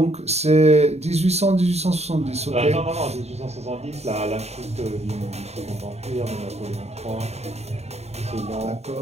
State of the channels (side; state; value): left; late; 0.31 ms